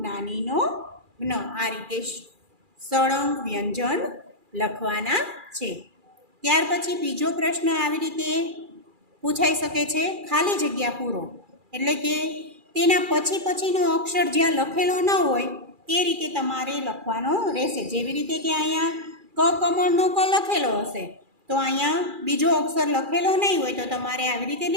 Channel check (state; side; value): late; left; 2.4 ms